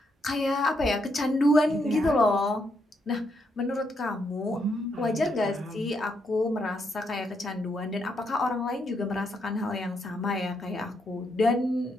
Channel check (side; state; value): both; normal; correlation 0.78